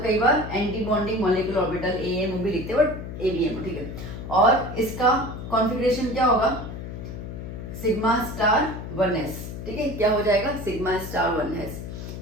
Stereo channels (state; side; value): noise; left; hum, 8 dB below the sound